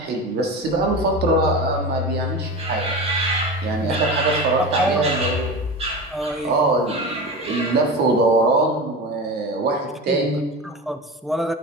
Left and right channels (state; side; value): normal; both; correlation 0.27